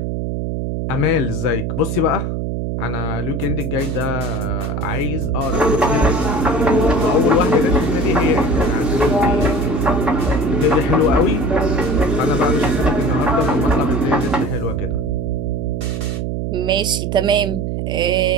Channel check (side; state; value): right; noise; hum, 2 dB below the sound